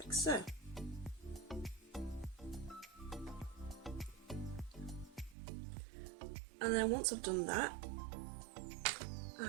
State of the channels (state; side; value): drops out; left; at 5.4 s